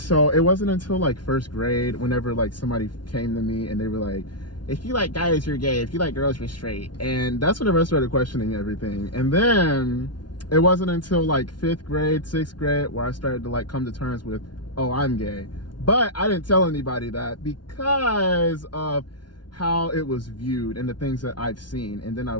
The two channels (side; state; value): right; late; 0.70 ms